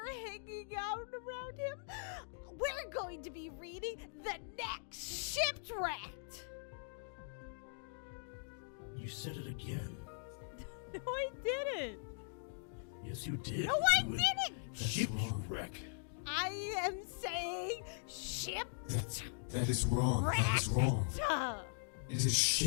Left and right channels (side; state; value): right; silent; digital silence